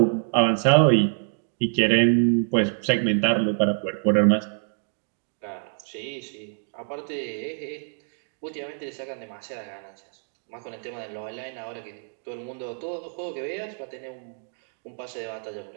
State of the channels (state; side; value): silent; left; 60 dB below the other